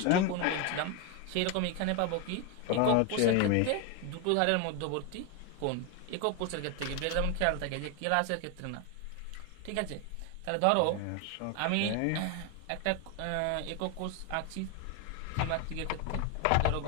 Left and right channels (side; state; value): both; different; correlation 0.01